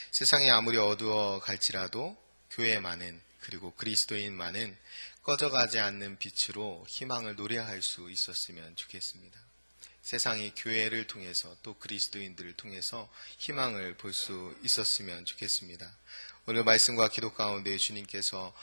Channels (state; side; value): inverted; both; correlation -1.00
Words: 세상이 아무리 어두워 갈지라도 교회만은, 그리고 그리스도인만은 꺼져가지 않는 빛으로 희망을 노래할 수 있었으면 좋겠습니다. 세상이 교회를 통해서 또 그리스도인들을 통해서 희망을 볼 수 있었으면 좋겠습니다. 오늘 말씀과 기도 가운데 주님께서